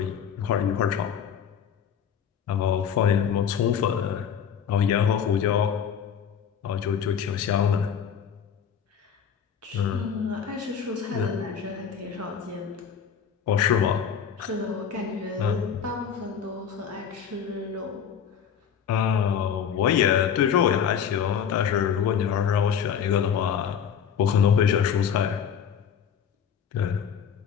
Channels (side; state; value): right; quieter; 7.8 dB